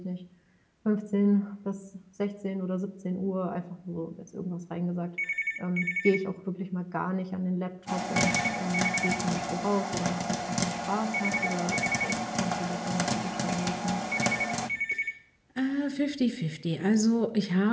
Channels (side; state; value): both; identical; correlation 1.00